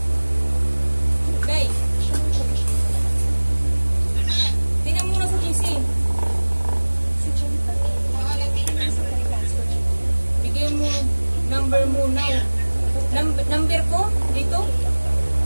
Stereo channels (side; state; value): both; inverted; correlation -1.00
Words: Okay. Tingnan mo na sa JC. Bigay mo number mo now. Number ko dito.